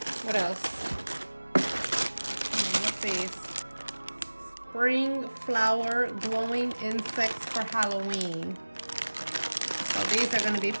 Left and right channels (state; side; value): inverted; both; correlation -1.00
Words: What else? What's these? Spring flower glowing insects for Halloween. So these are going to be